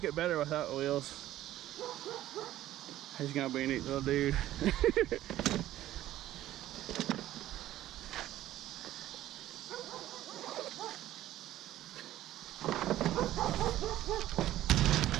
it better without wheels. He's gonna be a neat little dude.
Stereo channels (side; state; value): left; quieter; 13.9 dB